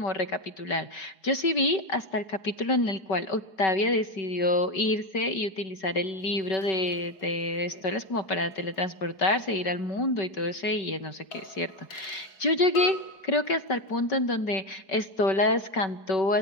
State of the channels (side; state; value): right; late; 5.2 ms